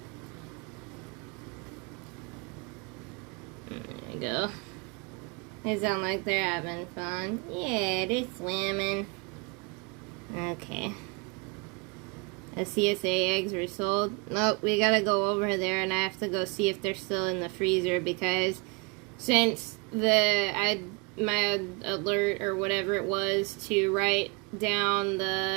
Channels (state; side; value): quieter; left; 30.0 dB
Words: There you go. They sound like they're having fun. Yeah, they're swimming. Okay. The CSA eggs were sold. Nope, we gotta go over there and I have to go see if they're still in the freezer, because since my alert or whatever it was to write